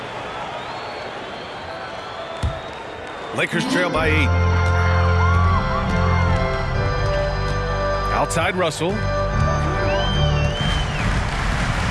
Lakers trail by 8. Outside Russell.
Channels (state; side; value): identical; both; correlation 1.00